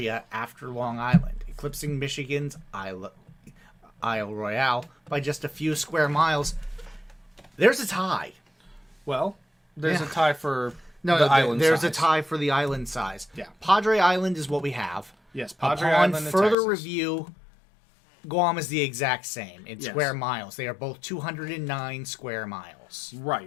after Long Island, eclipsing Michigan's Isle Royale by just a few square miles? There's a tie. Well, there's Yeah. a tie for No, the island there's size. a tie for the island size. Yeah. Padre Island is what we have. Yes, Padre Upon Island in further Texas. review, Guam is the exact same in Yes. square miles. They are both 209 square miles.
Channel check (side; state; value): right; drops out; at 16.6 s